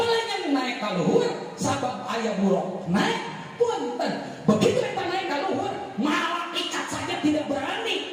naik ka luhur sabab aya buruk naik. Punten, begitu eta naik ka luhur, malaikat saja tidak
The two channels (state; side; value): identical; both; correlation 1.00